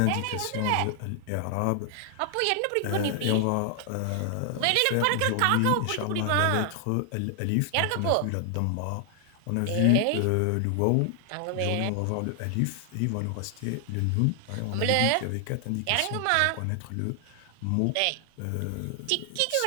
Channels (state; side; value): different; both; correlation 0.00